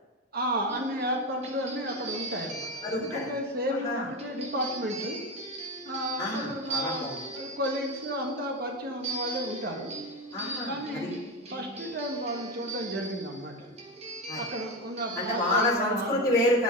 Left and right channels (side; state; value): both; normal; correlation 0.18